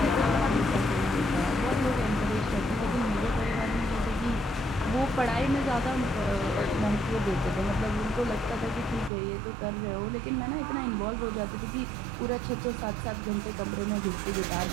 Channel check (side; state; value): left; drops out; at 9.1 s